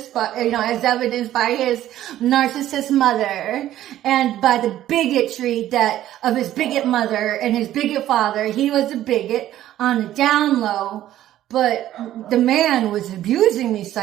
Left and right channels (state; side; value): quieter; left; 13.0 dB